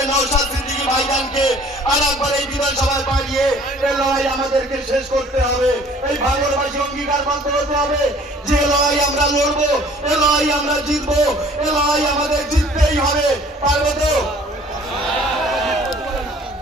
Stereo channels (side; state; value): both; normal; correlation 0.53